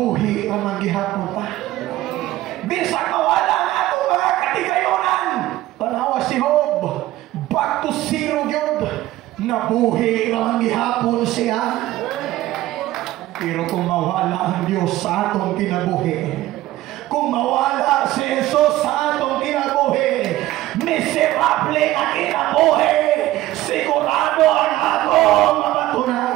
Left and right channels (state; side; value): quieter; left; 15.8 dB